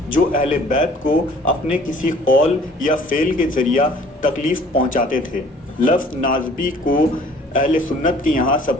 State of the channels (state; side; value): normal; both; correlation 0.53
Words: جو اہل بیت کو اپنے کسی قول یا فعل کے ذریعہ تکلیف پہنچاتے تھے۔ لفظ ناصبی کو اہل سنت کے یہاں